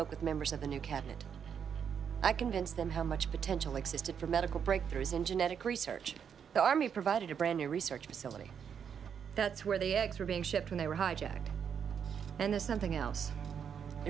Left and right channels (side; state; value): left; quieter; 7.5 dB